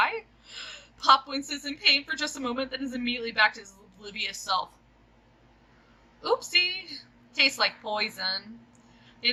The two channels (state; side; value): identical; both; correlation 1.00